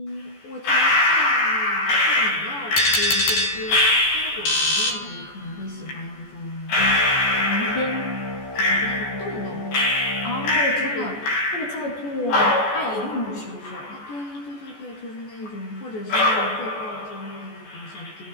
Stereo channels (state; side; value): late; right; 14 ms